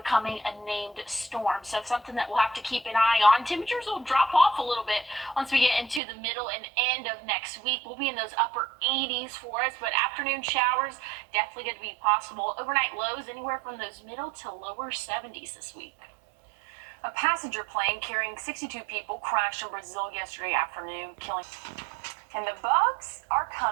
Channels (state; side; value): drops out; left; at 6.0 s